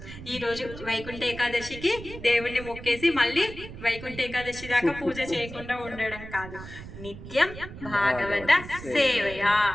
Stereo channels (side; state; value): right; noise; rumble, 13 dB below the sound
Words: ఈరోజు వైకుంఠ ఏకాదశికి దేవుణ్ణి మొక్కేసి మళ్ళీ వైకుంఠ ఏకాదశి దాకా పూజ చేయకుండా ఉండడం కాదు. నిత్యం భాగవత సేవయా,